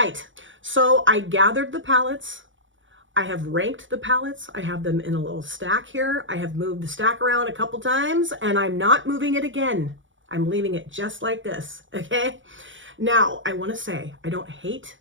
So I gathered the palettes. I have ranked the palettes. I have them in a little stack here. I have moved the stack around a couple times, and I'm not moving it again. I'm leaving it just like this, okay? Now, I want to say I don't hate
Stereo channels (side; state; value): left; late; 0.56 ms